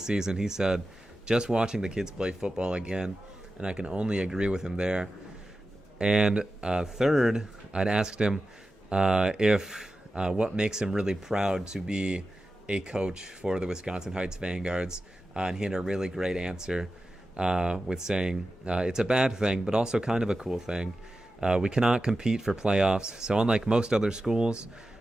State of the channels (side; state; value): both; normal; correlation 0.93